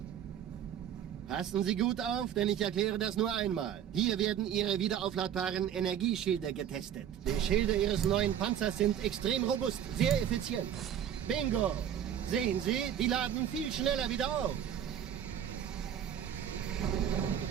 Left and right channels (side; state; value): left; quieter; 9.7 dB